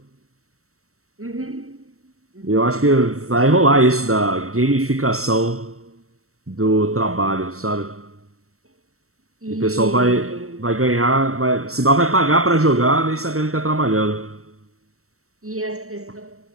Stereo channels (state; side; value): late; left; 0.63 ms